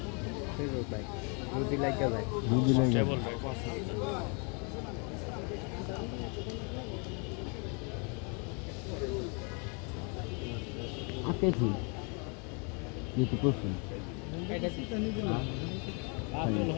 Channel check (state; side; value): quieter; right; 35.4 dB